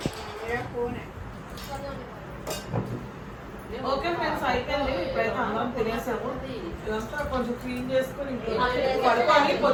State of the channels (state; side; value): identical; both; correlation 1.00